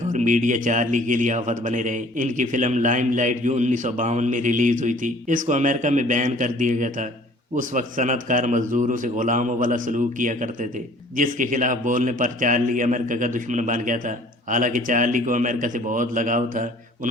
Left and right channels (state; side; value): normal; both; correlation 0.52